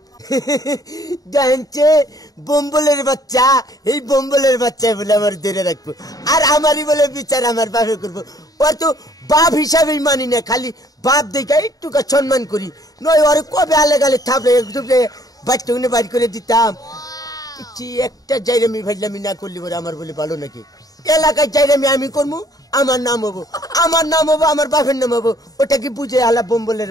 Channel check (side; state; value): right; late; 0.18 ms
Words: জানছে বম্বলের বাচ্চা এই বম্বলের বাচ্চা বলে আমার ধরে রাখবো আর আমারই বলে বিচার আমার বাপে করবো ওর তো বাপ হিসাবেই মানি না খালি বাপ দেখে একটু সম্মান করি নয় ওর কবে আলে গালে থাপড়ে একটুকরে বাচ্চা গুনে বাড়ি করে দিতাম একটা জায়গামি ভাজলামি না করলে বলে আমার বলে ভালো নাকি এলাকায় জায়গামি আমি করবো আমার নাম হবো আমার বাপের নাম হবো ওটা কি বুঝে হালা বম্বলের